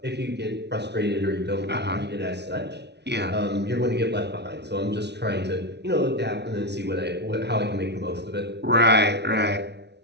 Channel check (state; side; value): late; left; 0.50 ms